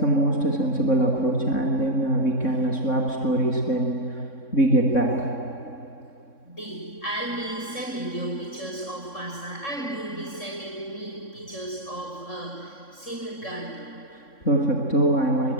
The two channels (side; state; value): right; late; 3.6 ms